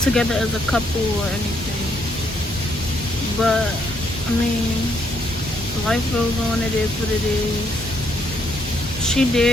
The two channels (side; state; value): both; normal; correlation 0.72